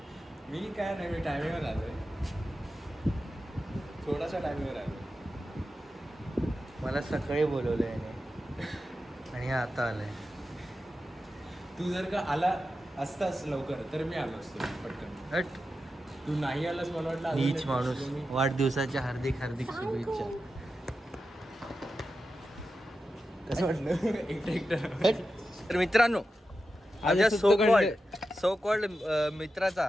मी काय नाही, मी टायमिंगवर आलोय. थोडासा टायमिंगवर आलो. मला सकाळी बोलवलं याने आणि हे आता आलंय. तू जर का आला असतास लवकर तर मी आलो असतो पटकन. हट. तू नाही आलास मला वाटलं अजून नीच एक माणूस. दिवस मी- वाढदिवसाच्या हार्दिक हार्दिक शुभेच्छा. कसं वाटलं एकटं एकटं. तर मित्रांनो, माझ्या सो कॉल्ड मित्राचा,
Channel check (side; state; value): both; normal; correlation 0.91